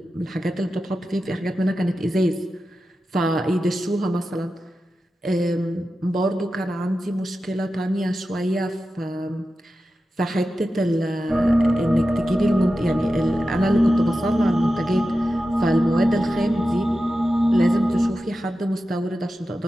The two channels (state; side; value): normal; both; correlation 0.92